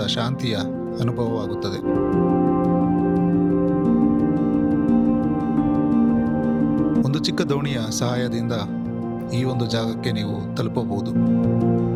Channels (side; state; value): both; identical; correlation 1.00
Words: ಶಾಂತಿಯ ಅನುಭವವಾಗುತ್ತದೆ. ಒಂದು ಚಿಕ್ಕ ದೋಣಿಯ ಸಹಾಯದಿಂದ ಈ ಒಂದು ಜಾಗಕ್ಕೆ ನೀವು ತಲುಪಬಹುದು.